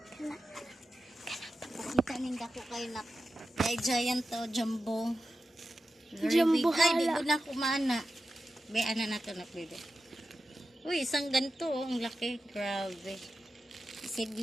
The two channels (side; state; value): both; normal; correlation 0.92